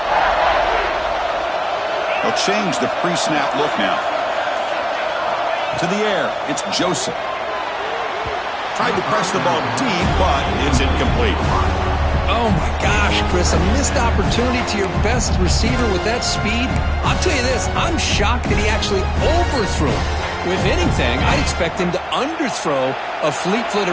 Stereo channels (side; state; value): both; identical; correlation 1.00